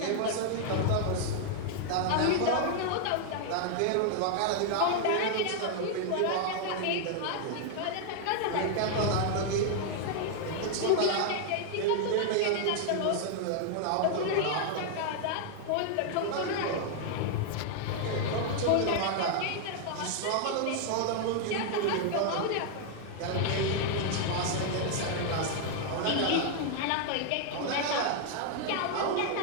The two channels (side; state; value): both; different; correlation 0.00